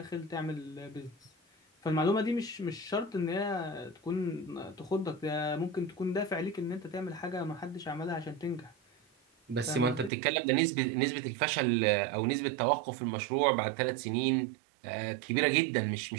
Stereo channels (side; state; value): left; drops out; at 10.1 s